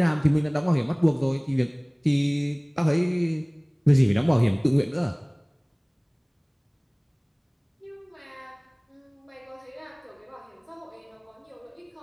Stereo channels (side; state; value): both; identical; correlation 1.00